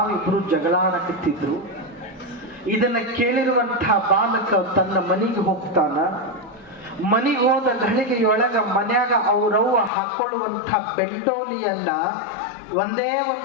ಜಗಳ ಆಡಕತ್ತಿದ್ರು. ಇದನ್ನ ಕೇಳಿರುವಂತಹ ಬಾಲಕ ತನ್ನ ಮನೆಗೆ ಹೋಗ್ತಾನ. ಮನೆಗೆ ಹೋದ ಘಳಿಗೆಯೊಳಗ ಮನ್ಯಾಗ ಅವ್ರವ್ವ ಹಾಕೊಳ್ಳುವಂಥ ಬೆಂಡೋಲಿಯನ್ನ ಒಂದೇ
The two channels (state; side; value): drops out; right; at 9.9 s